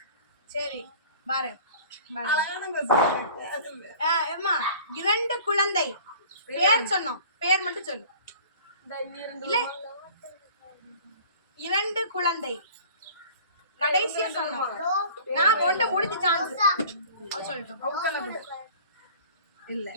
சரி, பாரு. அழகான question. அம்மா, 2 குழந்தை பேர் சொன்னோம். பேர் மட்டும் சொல்லு. இல்ல, 2 குழந்தை கடைசியா சொன்னோம். நான் ஒண்ட முடிஞ்ச சான்ஸ் சொல்லிட்டோம். அவங்க சொல்லக்கூடாது. இல்ல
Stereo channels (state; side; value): inverted; both; correlation -0.46